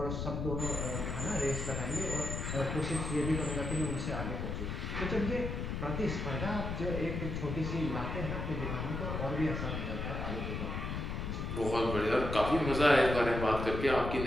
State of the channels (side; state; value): left; noise; rumble, 3 dB below the sound